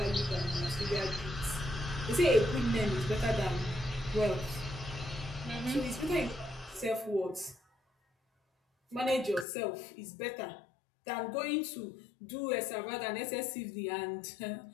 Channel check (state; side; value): drops out; right; at 9.5 s